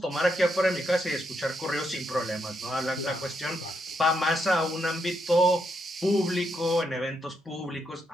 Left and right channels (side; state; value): both; normal; correlation 0.79